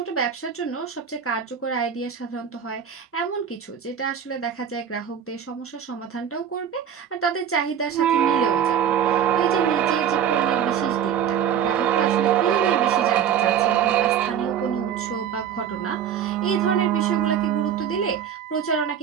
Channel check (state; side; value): quieter; left; 8.6 dB